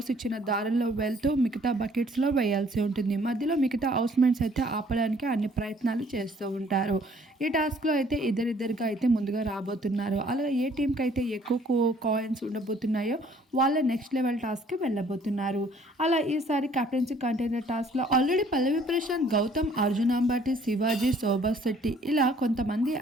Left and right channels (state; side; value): normal; both; correlation 0.59